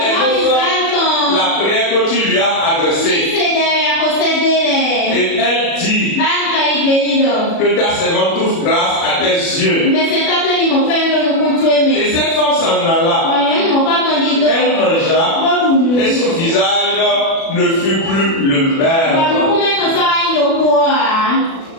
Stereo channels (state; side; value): late; right; 36 ms